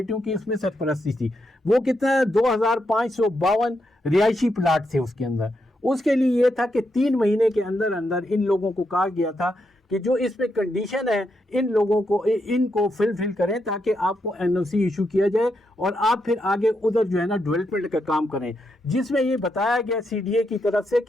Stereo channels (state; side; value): normal; both; correlation 0.82